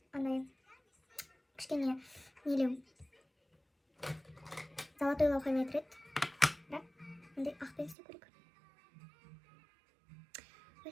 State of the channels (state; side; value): drops out; left; at 8.0 s